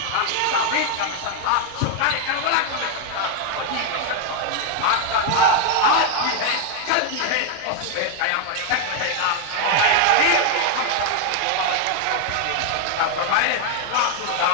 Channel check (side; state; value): both; different; correlation 0.01